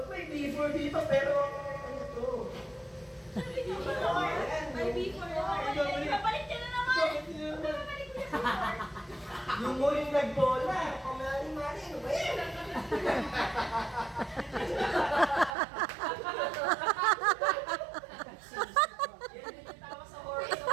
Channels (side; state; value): left; drops out; at 15.6 s